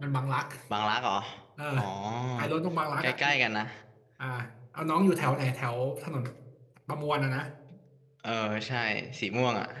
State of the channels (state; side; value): identical; both; correlation 1.00